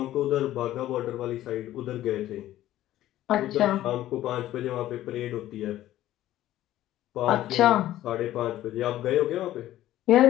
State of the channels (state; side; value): quieter; right; 14.0 dB